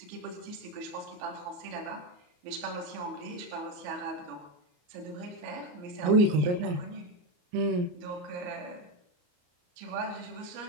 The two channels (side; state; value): left; late; 34 ms